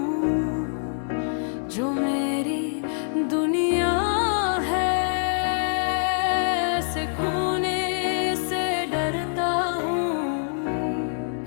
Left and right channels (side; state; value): right; silent; 60 dB below the other